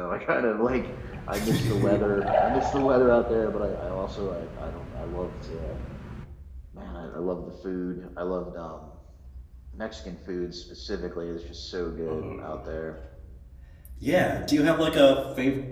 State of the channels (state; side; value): identical; both; correlation 1.00